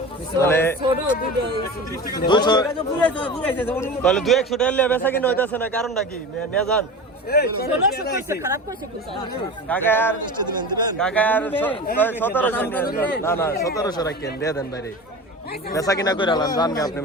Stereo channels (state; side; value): normal; both; correlation 0.31